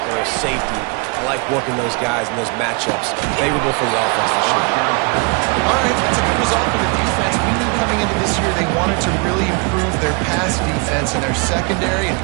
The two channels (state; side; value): quieter; left; 31.3 dB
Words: or a safety. I like working those guys in those matchups. Favorable for the offense for sure. All right, that's a good result for the defense. We knew coming into this year they wanted to really improve their pass defense and their secondary and